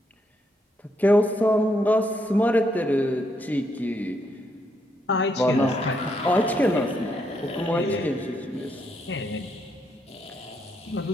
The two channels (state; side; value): normal; both; correlation 0.76